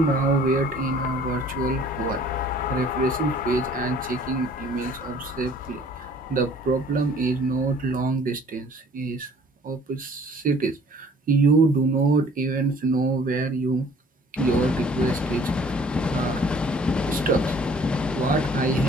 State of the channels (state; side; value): normal; both; correlation 0.54